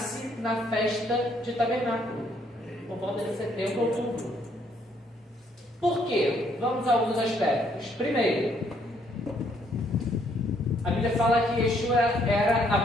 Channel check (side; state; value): both; normal; correlation 0.68